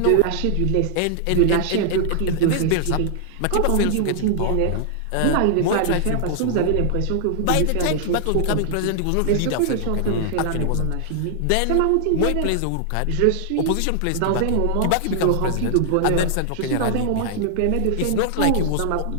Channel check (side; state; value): both; different; correlation -0.01